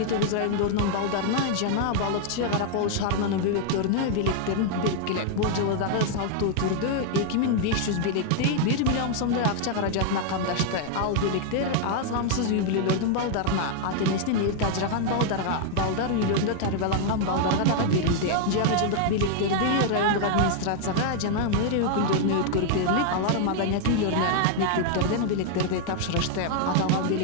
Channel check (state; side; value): different; both; correlation 0.00